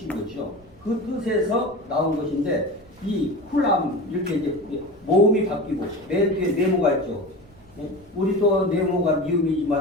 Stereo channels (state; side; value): noise; right; rumble, 27 dB below the sound